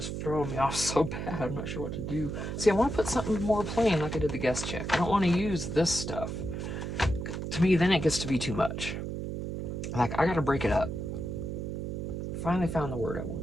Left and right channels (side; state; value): right; noise; hum, 4 dB below the sound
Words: throwing me off so bad. I'm not sure what to do. See, I want to put something more plain like I did the guest check. I don't want to use this stuff. To me, then it gets to be too much. Like, I got to break it up. Finally found the word I